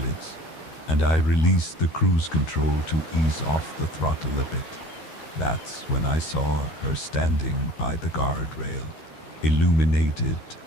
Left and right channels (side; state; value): right; late; 13 ms